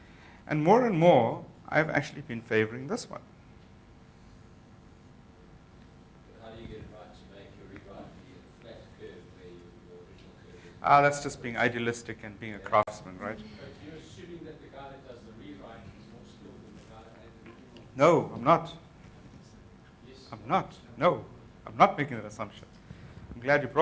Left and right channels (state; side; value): identical; both; correlation 1.00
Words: And more, I've actually been favoring this one. How do you get it right to make your rewrite be a flat curve where your original curve is? That's just being idealistic and being a craftsman, right? But you're assuming that the guy that does the rewrite is more skilled than the guy that made the original. No, I'm not. Yes. I'm not. No, I'm not making that assumption. I'm glad you